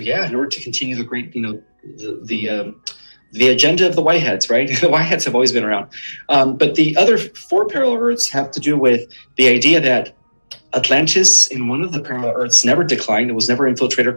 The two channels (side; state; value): both; inverted; correlation -1.00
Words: continue the great, the agenda of the Whiteheads, right? The Whiteheads have always been around. But the other 4 parallel Earths have to do with the idea that Atlantis in one of the parallel Earths never declined. It was never infiltrated or